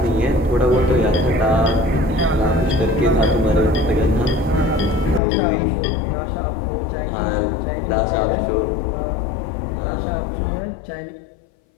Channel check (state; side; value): drops out; right; at 5.2 s